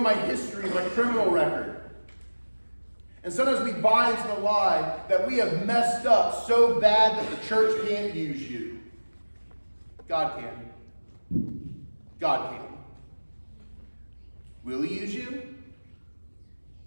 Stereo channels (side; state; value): both; inverted; correlation -1.00